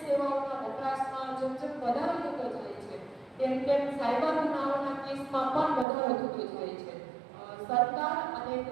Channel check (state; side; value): drops out; left; at 5.9 s